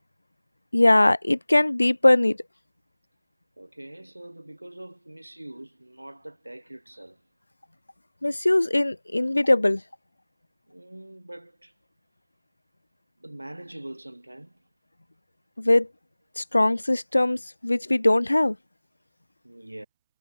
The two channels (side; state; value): both; inverted; correlation -1.00